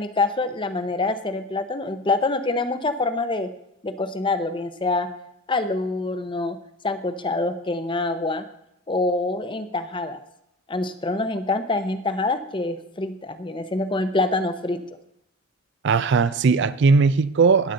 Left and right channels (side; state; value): both; normal; correlation 0.31